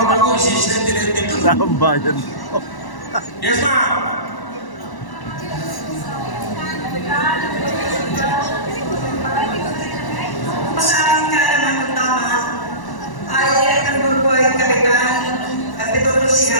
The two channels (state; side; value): late; right; 1.0 ms